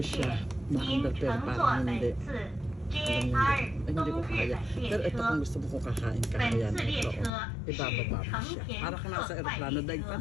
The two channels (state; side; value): drops out; right; at 7.3 s